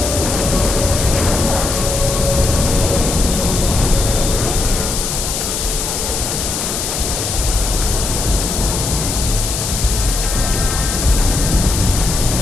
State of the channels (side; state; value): left; noise; hiss, 3 dB below the sound